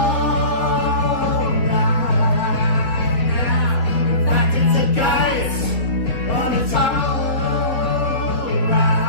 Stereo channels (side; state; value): right; late; 3.5 ms